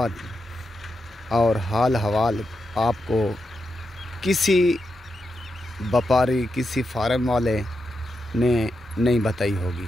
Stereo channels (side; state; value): both; normal; correlation 0.86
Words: और हाल हवाल आपको किसी व्यापारी, किसी फार्म वाले ने नहीं बताई होगी,